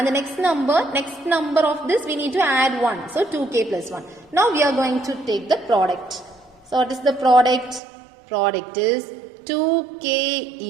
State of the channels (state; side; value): drops out; left; at 7.8 s